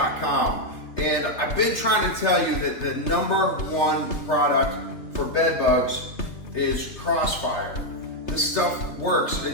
And I've been trying to tell you that the #1 product for bed bugs is Crossfire. This stuff works.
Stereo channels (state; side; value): late; right; 3.3 ms